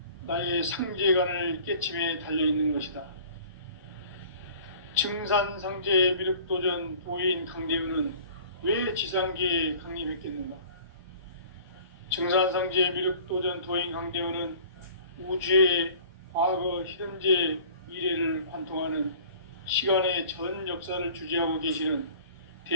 나의 상제관을 깨침에 달려있는 것이다. 증산상제 미륵도전 도인 강대훈은 왜 지상계에 강림했겠는가? 증산상제 미륵도전 도인 강대훈은 우주의 과거, 현재, 미래를 관통하는 시간의 전 역사를 주재하고 계시는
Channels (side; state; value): both; inverted; correlation -0.47